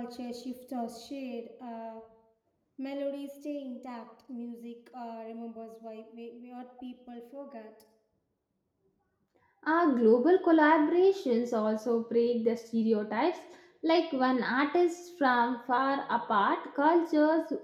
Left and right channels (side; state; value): both; identical; correlation 1.00